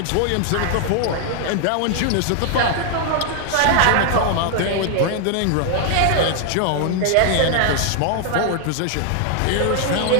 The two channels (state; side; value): different; both; correlation 0.00